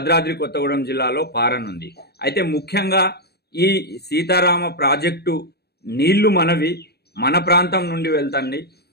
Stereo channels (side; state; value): right; late; 0.47 ms